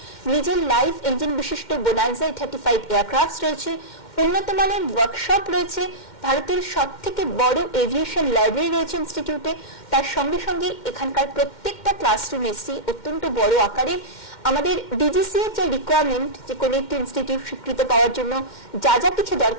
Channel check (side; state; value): right; late; 2.1 ms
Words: নিজের লাইভ ইঞ্জিন বিশিষ্ট বোনান্সা 35 এয়ারক্রাফট রয়েছে, উন্নত মানের ওয়ার্কশপ রয়েছে, ভারতের সব থেকে বড় এভিয়েশন লাইব্রেরি রয়েছে ইনস্টিটিউটে। তার সঙ্গে সঙ্গে এখানকার প্রত্যেকটা ক্লাসরুম এসি অত্যন্ত বড় আকারের। আমাদের ডিজিসি এর যে রিকোয়ারমেন্ট, যে কোনো একটি ইনস্টিটিউট স্বীকৃত পাওয়ার জন্য যা যা কিছু